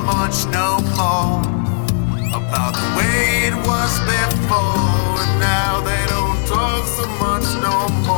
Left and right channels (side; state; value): right; silent; digital silence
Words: no more about the way it was before. And now they don't talk